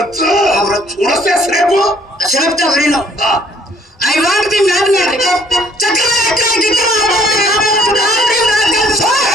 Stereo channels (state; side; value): normal; both; correlation 0.60